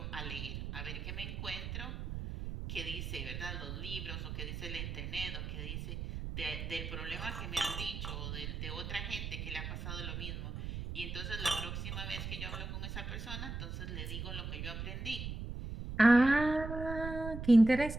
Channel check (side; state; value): right; noise; rumble, 6 dB below the sound